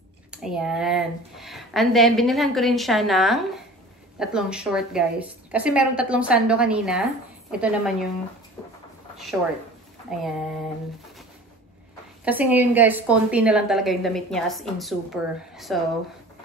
Ayan. And then, binilhan ko rin siya ng 3 short, guys. Kasi merong 3 sando kanina. Ito naman yung short. Ayan. Kasi ngayon, guys, konti na lang talaga yung damit niya as in super. So,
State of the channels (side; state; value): both; normal; correlation 0.42